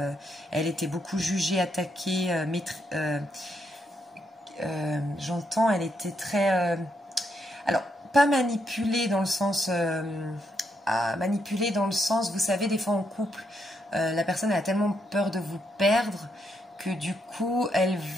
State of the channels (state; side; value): normal; both; correlation 0.79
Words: elle était beaucoup jugée, attaquée, j'entends, elle était très... alors, pas manipulée dans le sens... vous savez, des fois en couple, la personne elle a tellement peur de vous perdre que du coup, elle